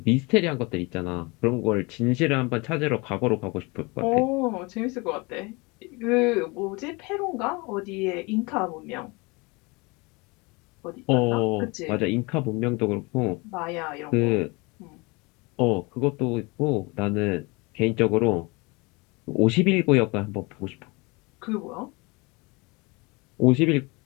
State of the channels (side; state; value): right; quieter; 26.7 dB